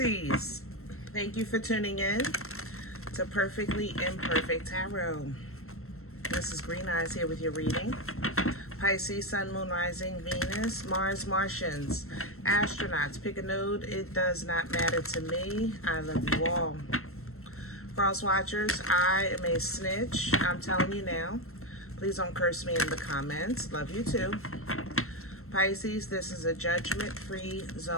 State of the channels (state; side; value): late; right; 0.62 ms